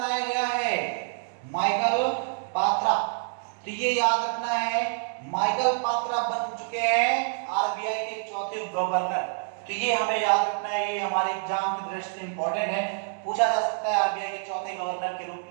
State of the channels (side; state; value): left; silent; digital silence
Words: गया है। माइकल पात्रा, तो ये याद रखना है, माइकल पात्रा बन चुके हैं आरबीआई के चौथे उप गवर्नर। तो ये हमें याद रखना है, ये हमारे एग्जाम की दृष्टि से इंपॉर्टेंट है। पूछा जा सकता है आरबीआई के चौथे गवर्नर के रूप